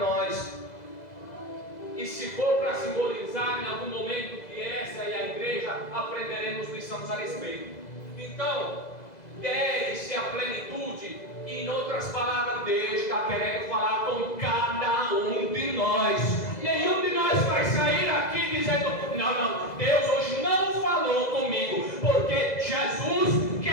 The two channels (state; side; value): late; right; 2.0 ms